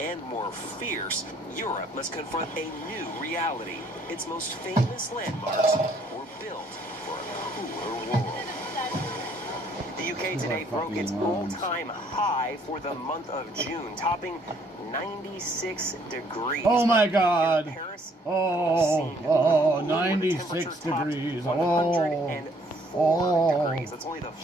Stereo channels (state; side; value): normal; both; correlation 0.64